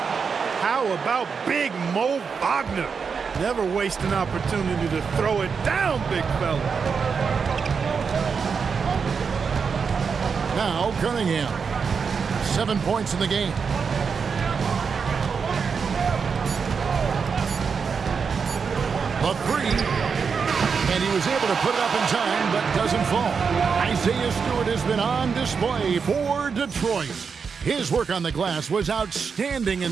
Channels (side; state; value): left; quieter; 5.8 dB